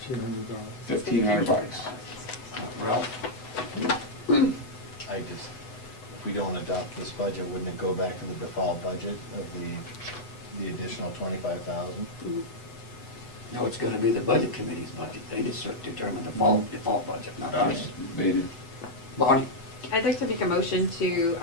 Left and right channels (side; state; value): right; late; 8.0 ms